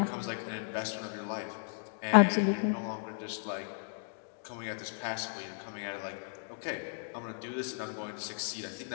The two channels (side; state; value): right; silent; digital silence